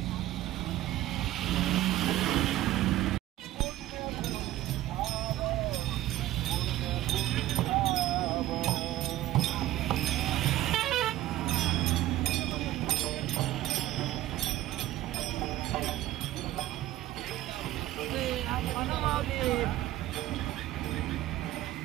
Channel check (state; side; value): quieter; left; 15.0 dB